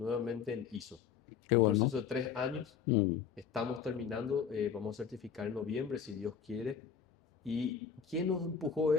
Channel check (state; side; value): quieter; right; 7.2 dB